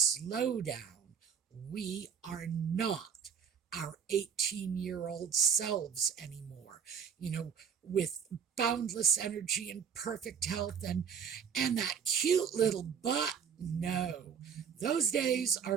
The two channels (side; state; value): left; quieter; 7.3 dB